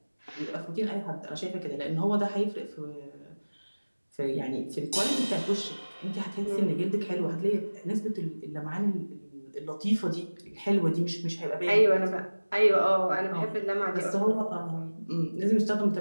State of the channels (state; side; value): inverted; both; correlation -1.00